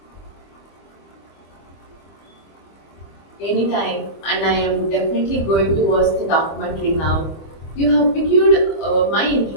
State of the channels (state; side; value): late; right; 25 ms